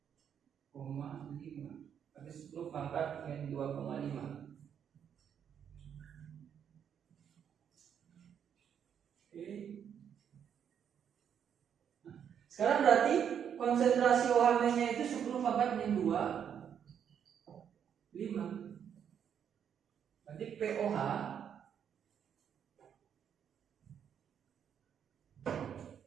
berarti 10 pangkat min 2,5. Oke. Sekarang berarti konsentrasi OH-nya itu 10 pangkat min 2,5. Berarti POH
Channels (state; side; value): quieter; left; 8.4 dB